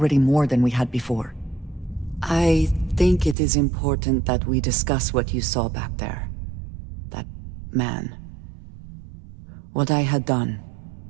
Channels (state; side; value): drops out; left; at 3.4 s